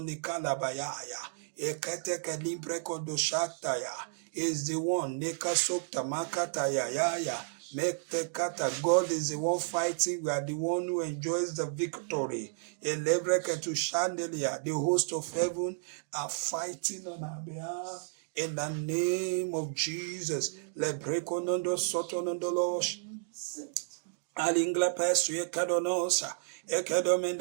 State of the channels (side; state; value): left; silent; digital silence